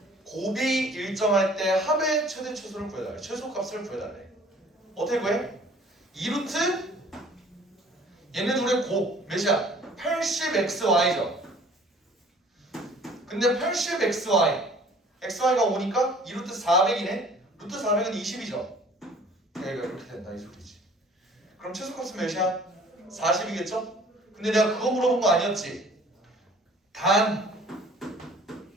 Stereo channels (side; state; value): both; normal; correlation 0.52